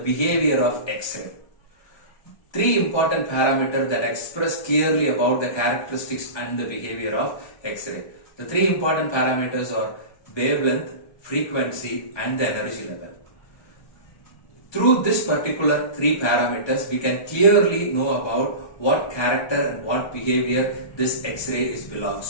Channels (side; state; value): right; late; 1.2 ms